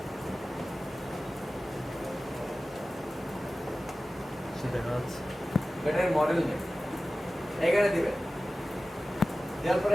দেখা যাচ্ছে। ব্যাটারি মডেল নেই, এখানে দিবেন, দেওয়ার পরে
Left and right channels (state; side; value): normal; both; correlation 0.96